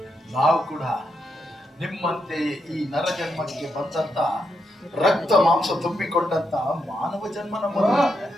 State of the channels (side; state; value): both; normal; correlation 0.82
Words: ನಾವು ಕೂಡ ನಿಮ್ಮಂತೆ ಈ ನರ ಜನ್ಮಕ್ಕೆ ಬಂದಂತ ರಕ್ತ ಮಾಂಸ ತುಂಬಿಕೊಂಡಂತ ಮಾನವ ಜನ್ಮ ನಮ್ಮದು.